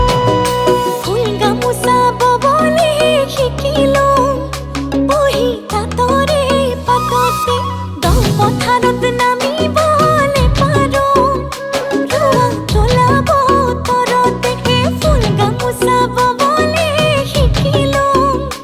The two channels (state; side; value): identical; both; correlation 1.00